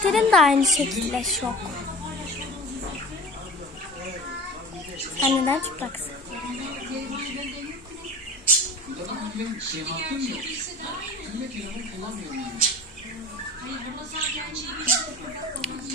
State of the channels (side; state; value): both; normal; correlation 0.38